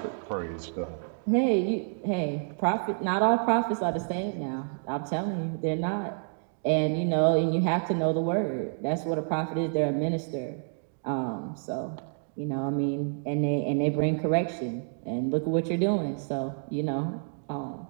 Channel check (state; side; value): silent; left; digital silence